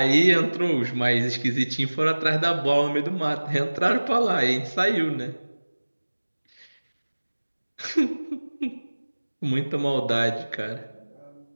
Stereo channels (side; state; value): both; inverted; correlation -1.00